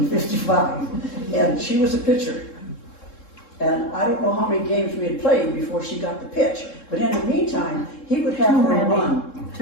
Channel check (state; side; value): late; right; 3.7 ms